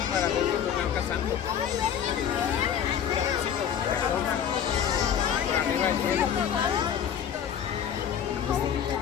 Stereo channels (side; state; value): right; quieter; 8.8 dB